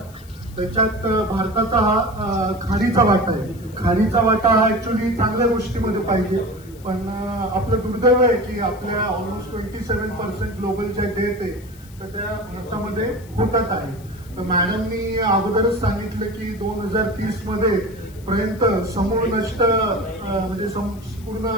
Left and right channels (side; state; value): left; noise; hiss, 24 dB below the sound